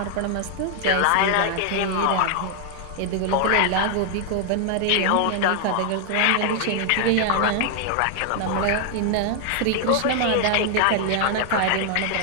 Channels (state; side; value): different; both; correlation 0.00